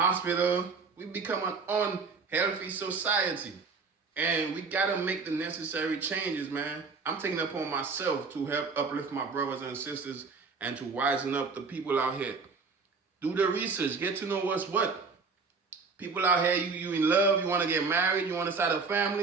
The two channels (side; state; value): left; quieter; 4.6 dB